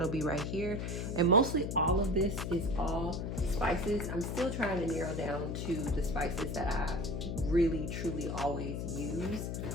be right here. And mostly all of this is all spices. I'm still trying to narrow down to the spices that I really truly always use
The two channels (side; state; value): left; noise; hum, 3 dB below the sound